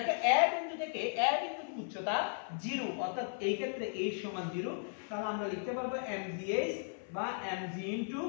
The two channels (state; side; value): silent; right; 54 dB below the other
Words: এ বিন্দু থেকে এ বিন্দুর উচ্চতা 0, অর্থাৎ এই ক্ষেত্রে h সমান 0, তাহলে আমরা লিখতে পারবো mgh বা mg ইনটু